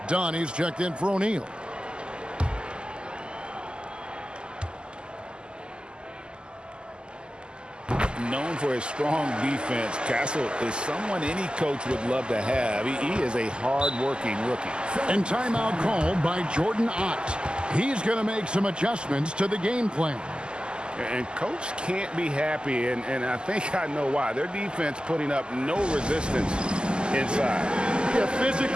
Donnie's checked in for O'Neal. Known for his strong defense, Castle is someone any coach would love to have. He is a hard-working rookie. And timeout called by Jordan Ott. He's going to make some adjustments to the game plan. And coach can't be happy, and I think I know why. Their defense putting up no resistance inside. Yeah,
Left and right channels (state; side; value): late; left; 0.048 ms